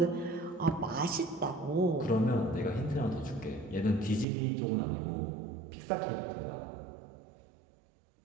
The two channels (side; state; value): left; drops out; at 4.2 s